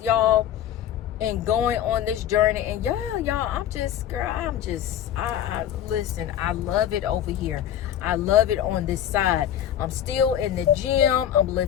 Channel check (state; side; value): quieter; right; 10.5 dB